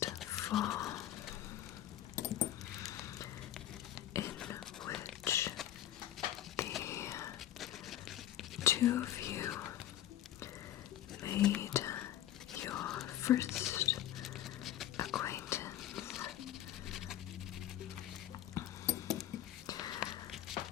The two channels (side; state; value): right; quieter; 12.5 dB